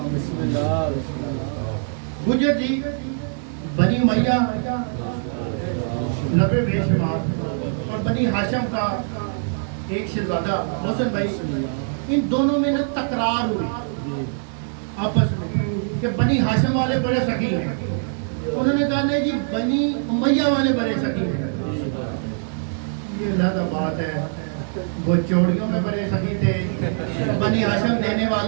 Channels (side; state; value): left; silent; 64 dB below the other